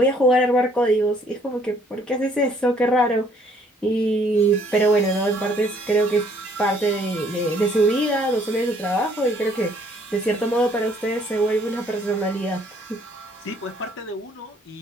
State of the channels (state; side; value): normal; both; correlation 0.63